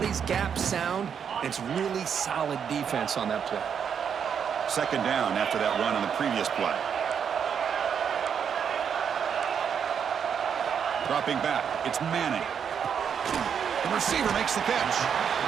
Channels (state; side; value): quieter; left; 7.5 dB